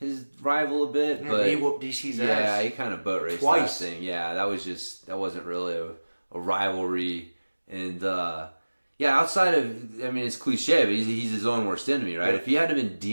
rival a bit, but he whooped DC's ass. Yeah, he kind of boat raced twice. That thing. Yeah, that wasn't really a rivalry. And outside of, I mean, it's cliche, but he's his own worst enemy, right? Yeah. If he hadn't been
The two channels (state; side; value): inverted; both; correlation -1.00